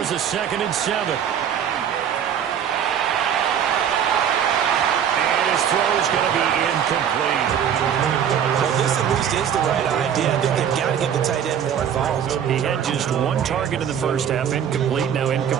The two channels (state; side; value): quieter; left; 8.7 dB